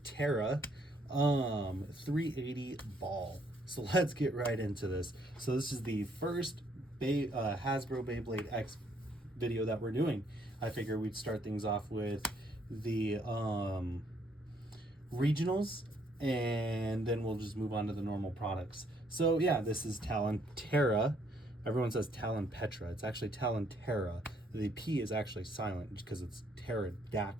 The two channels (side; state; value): both; normal; correlation 0.68